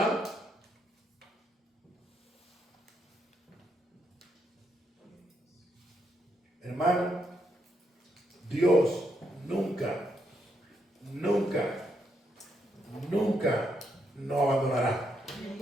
Hermano, Dios nunca nos abandonará.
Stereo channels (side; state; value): both; normal; correlation 0.78